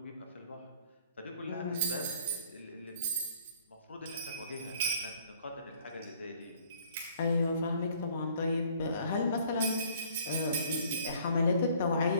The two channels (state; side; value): inverted; both; correlation -0.58